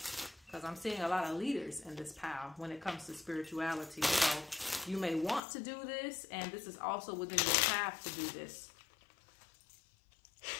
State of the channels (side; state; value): right; drops out; at 5.4 s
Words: I'm seeing a lot of leaders in this pile when it comes to spirituality. So you may want to do this, and this is also within your path to do this.